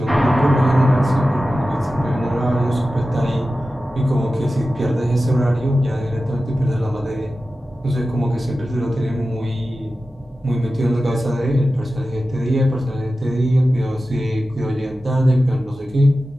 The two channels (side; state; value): both; normal; correlation 0.94